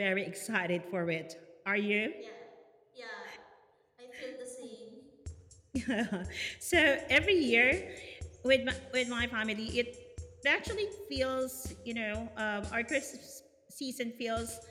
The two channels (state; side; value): identical; both; correlation 1.00